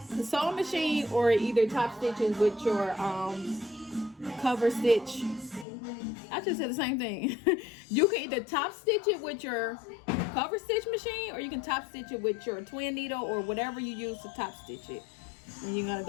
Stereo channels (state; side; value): drops out; right; at 5.7 s